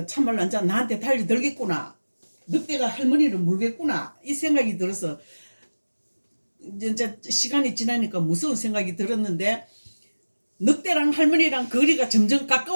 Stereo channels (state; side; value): inverted; both; correlation -1.00